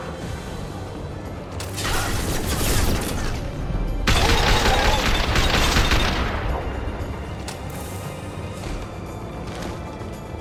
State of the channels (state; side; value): identical; both; correlation 1.00